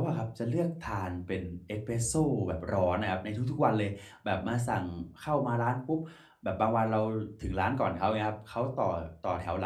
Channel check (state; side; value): identical; both; correlation 1.00